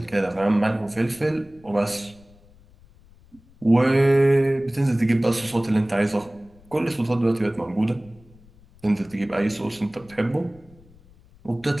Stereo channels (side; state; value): left; noise; rumble, 26 dB below the sound